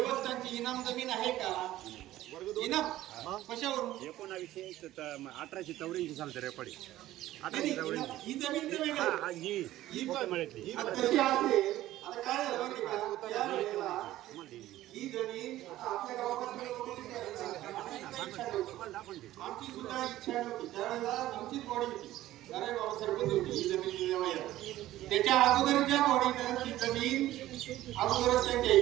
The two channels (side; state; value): left; quieter; 14.8 dB